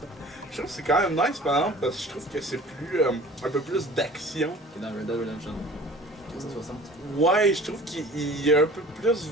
je trouve que c'est quand même nice par exemple, parce que je trouve que c'est plus. Un peu plus d'action. Qui est dans Red Dead Redemption 360. Ouais, je trouve qu'il y a un peu plus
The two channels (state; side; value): normal; both; correlation 0.45